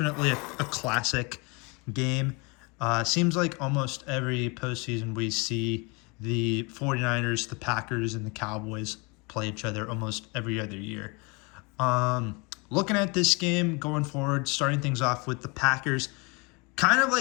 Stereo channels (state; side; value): quieter; right; 29.3 dB